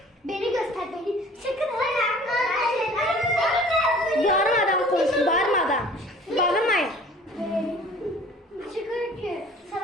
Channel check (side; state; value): both; normal; correlation 0.48